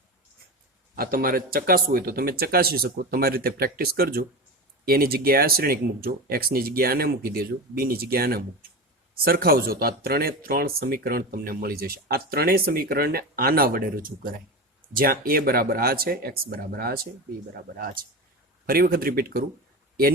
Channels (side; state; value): both; normal; correlation 0.24